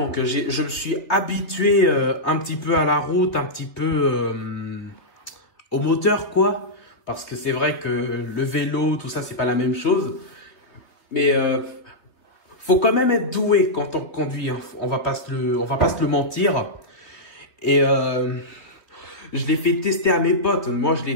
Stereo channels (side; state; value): right; late; 3.5 ms